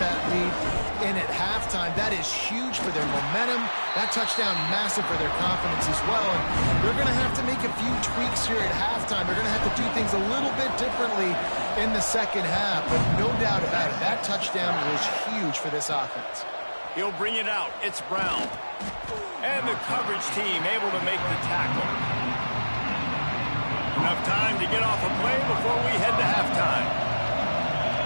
that lead in at halftime. That is huge for their momentum. That touchdown, massive for their confidence as well. And they're going to have to make a few tweaks here at halftime. They're going to have to do things a little bit differently in the 2nd half. But no doubt about it, that touchdown was huge for this offense. He'll bring it out. It's Brown. And the coverage team able to make the tackle. Enough time to get off a play before we head to halftime.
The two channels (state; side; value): inverted; both; correlation -1.00